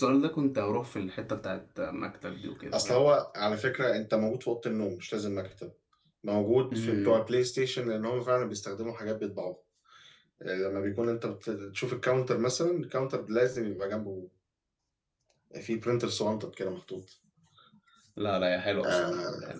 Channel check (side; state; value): both; identical; correlation 1.00